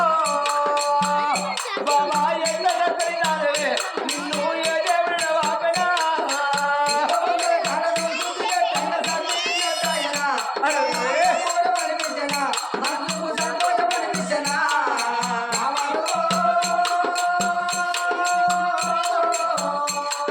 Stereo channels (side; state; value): both; identical; correlation 1.00